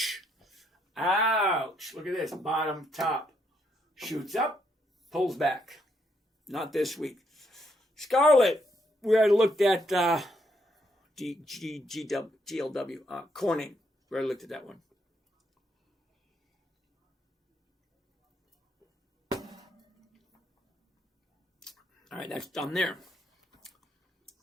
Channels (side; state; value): both; normal; correlation 0.75